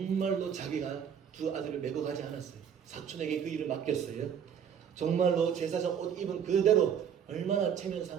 자기가 두 아들을 메고 가지 않았어요. 사촌에게 그 일을 맡겼어요. 정말로 제사장 옷 입은 그대로, 얼마나 체면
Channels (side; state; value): left; quieter; 8.0 dB